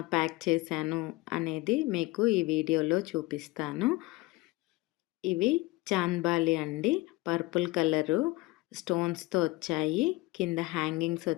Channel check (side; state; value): right; quieter; 21.4 dB